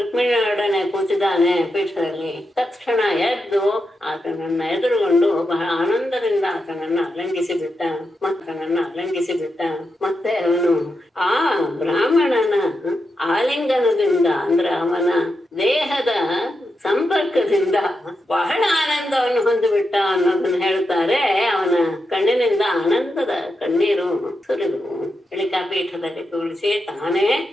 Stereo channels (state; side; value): normal; both; correlation 0.86